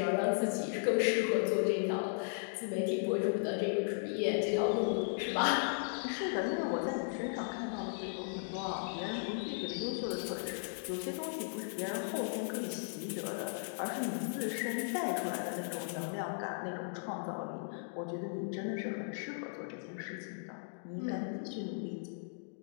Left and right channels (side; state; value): right; silent; digital silence